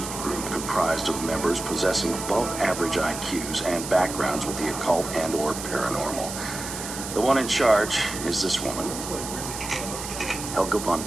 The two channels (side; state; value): right; noise; hiss, 8 dB below the sound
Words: group comprised of members possessing above-average IQs and backgrounds with the occult and/or paranormal. The one in charge is this woman, Helga von